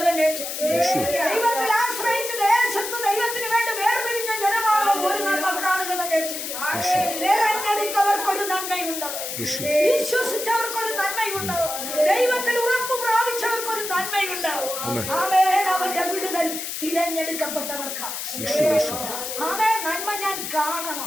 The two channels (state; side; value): noise; left; hiss, 5 dB below the sound